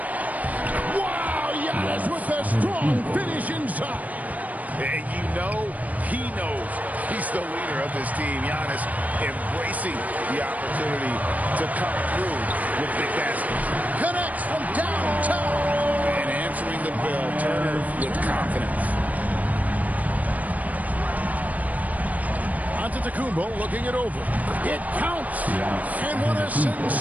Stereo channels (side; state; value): left; late; 0.074 ms